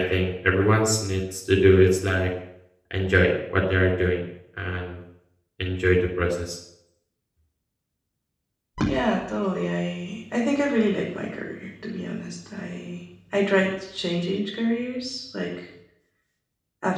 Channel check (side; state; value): both; identical; correlation 1.00